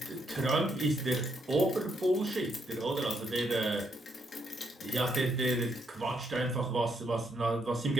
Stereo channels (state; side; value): normal; both; correlation 0.75